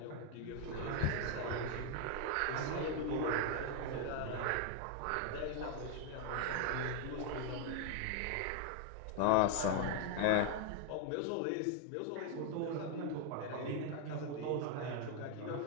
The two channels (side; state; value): both; different; correlation 0.00